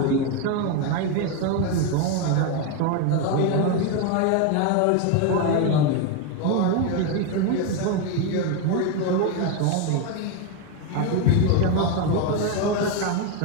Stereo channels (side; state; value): both; different; correlation 0.02